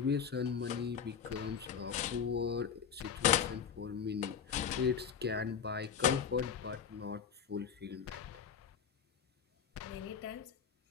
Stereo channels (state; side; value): quieter; right; 7.3 dB